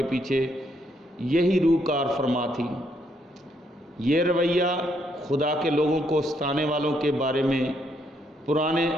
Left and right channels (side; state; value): both; normal; correlation 0.73